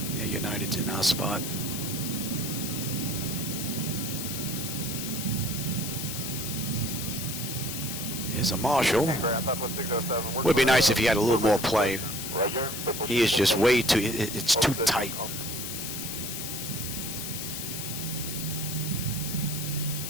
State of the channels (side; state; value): left; noise; hiss, 5 dB below the sound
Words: Yeah, United's in our spot. Here's a Marshall. Would be nice if he had a little more play. He is just way too. It's too tight.